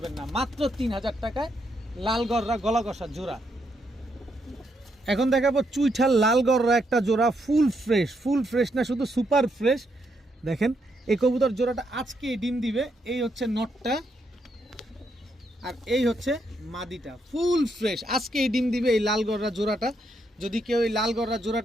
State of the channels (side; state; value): both; normal; correlation 0.78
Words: না। মাত্র 3000 টাকায় লাল গলা কষা জোড়া। এখন দেখাবো চুইঠাল লাল গররা একটা জোড়া, ফুল ফ্রেশ না শুধু সুপার ফ্রেশ। দেখেন এই কবুতর জোড়াটা আজকে ডিম দিবে। এই হচ্ছে নটটা আর এই হচ্ছে মাদিটা, ফুল ফ্রেশ আজকে এই ডিম দিবে এই লাল গররা জোড়াটা। যদি কেউ এই লাল গররা